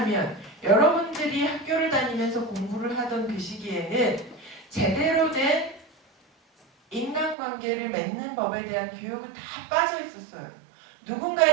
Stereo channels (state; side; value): drops out; left; at 7.4 s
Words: 여러분들이 학교를 다니면서 공부를 하던 그 시기에는 제대로 된 인간관계를 맺는 법에 대한 교육은 다 빠져 있었어요.